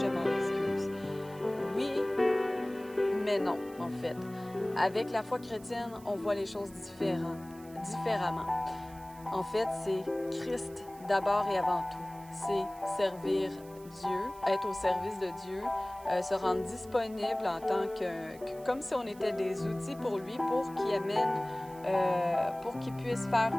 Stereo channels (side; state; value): right; noise; hiss, 23 dB below the sound